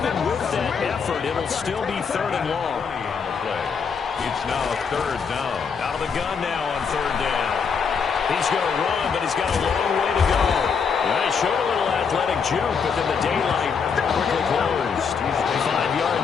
with that effort, it'll still be 3rd and long. It's now 3rd down. Out of the gun now on 3rd down. He's going to run, but he's got a long way to go. He showed a little athletic juke, but then the daylight quickly closed. 5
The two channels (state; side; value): quieter; right; 6.0 dB